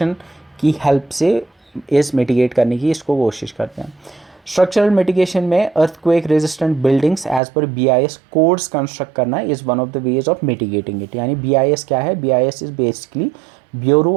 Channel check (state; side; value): drops out; left; at 7.4 s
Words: की हेल्प से इस मिटिगेट करने की इसको कोशिश करते हैं। स्ट्रक्चरल मिटिगेशन में earthquake resistant buildings as per BIS codes construct करना is one of the ways of mitigating it. यानी BIS क्या है? BIS is basically